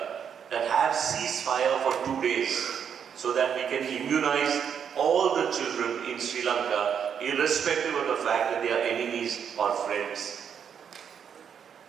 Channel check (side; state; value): left; quieter; 7.8 dB